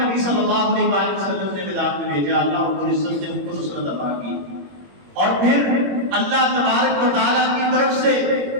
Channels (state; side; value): late; left; 21 ms